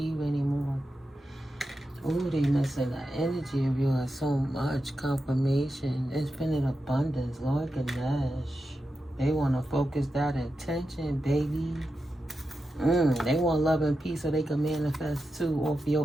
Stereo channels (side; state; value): both; normal; correlation 0.90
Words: anymore. Ooh, they missing the energy of yours so much. Confirmation, infinite abundance, Lord Ganesh. They want to focus that intention, baby. They want love and peace so they can manifest too off